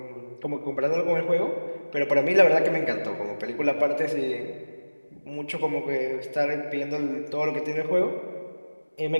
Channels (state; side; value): inverted; both; correlation -1.00